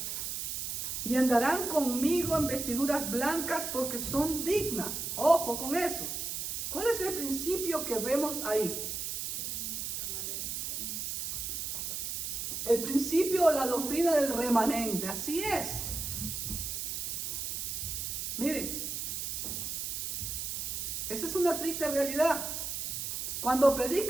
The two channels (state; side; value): noise; right; hiss, 3 dB below the sound